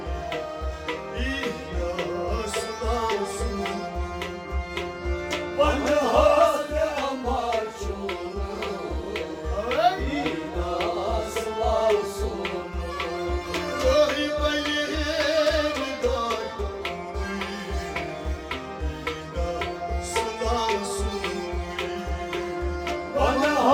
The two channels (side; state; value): both; identical; correlation 1.00